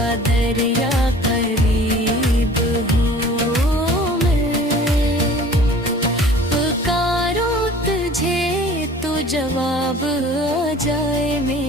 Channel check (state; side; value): normal; both; correlation 0.47